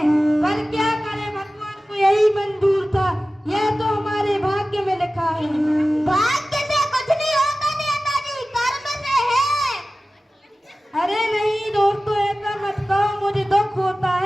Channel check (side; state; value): both; normal; correlation 0.96